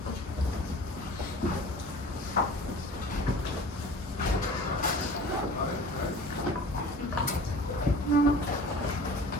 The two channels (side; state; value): both; normal; correlation 0.42